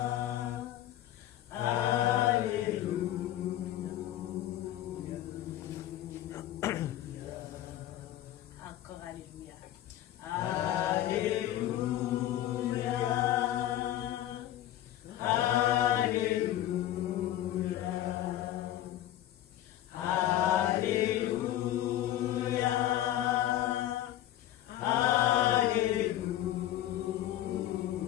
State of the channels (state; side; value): quieter; right; 13.0 dB